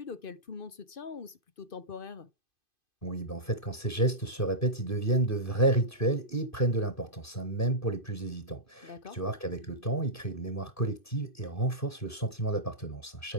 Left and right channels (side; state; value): right; late; 2.5 ms